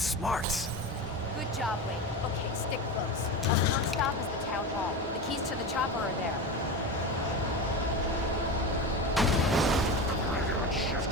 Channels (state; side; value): normal; both; correlation 0.24